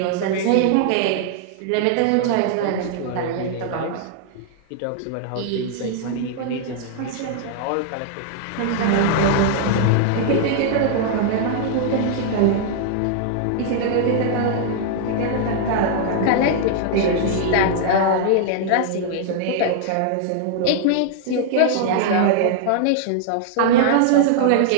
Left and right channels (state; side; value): different; both; correlation -0.01